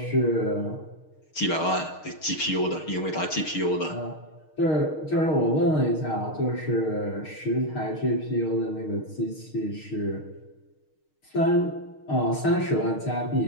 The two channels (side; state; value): right; late; 6.5 ms